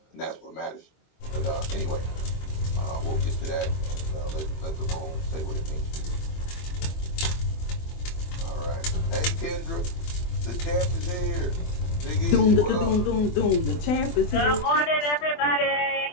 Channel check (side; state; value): right; late; 24 ms